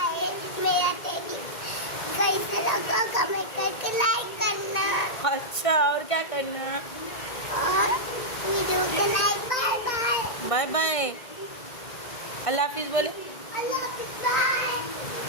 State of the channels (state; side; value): late; right; 1.8 ms